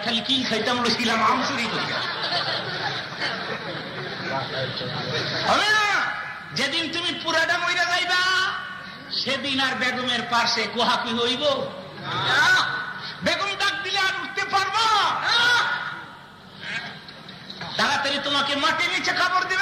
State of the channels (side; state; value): both; identical; correlation 1.00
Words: খালি কি খাইতাম ছিলাম আমচুরি করি হবে না। যেদিন তুমি পুরাটা মহিলা যাইবা সেদিন আর বেগমের পাশে কোহাকি হইব? বেগম ডাক দিলে আর উঠতে পারবা? তাড়াতাড়ি তোমাকে মাটি নিচে কাপড়